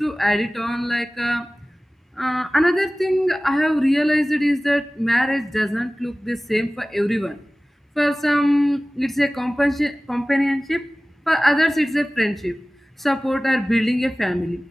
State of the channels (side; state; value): both; normal; correlation 0.98